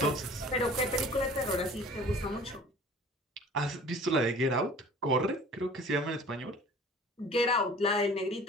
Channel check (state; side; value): normal; both; correlation 0.46